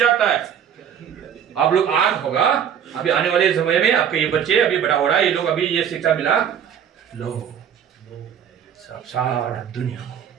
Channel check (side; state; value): left; quieter; 8.6 dB